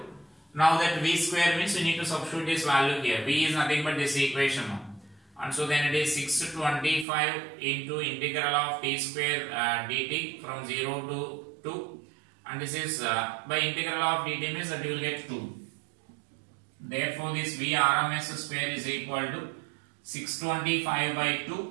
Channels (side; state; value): left; drops out; at 7.1 s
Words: now that V square means we need to substitute this value here. V is nothing but this equation now. And so then it is 625 into integral of t square dt from 0 to 2. And this is by integral of dt means that you will get 2. Therefore this VRMS square is equal to 625 by